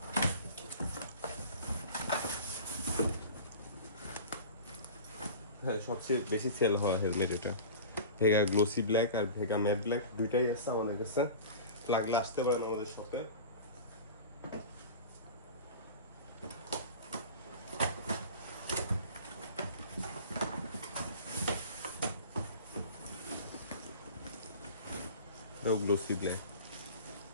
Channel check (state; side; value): inverted; both; correlation -0.36